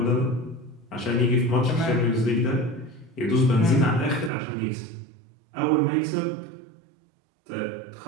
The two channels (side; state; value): left; drops out; at 4.3 s